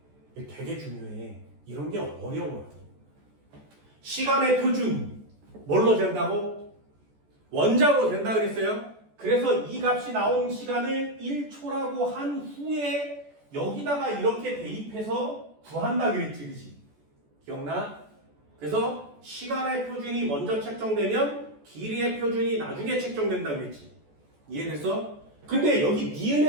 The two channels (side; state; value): left; late; 14 ms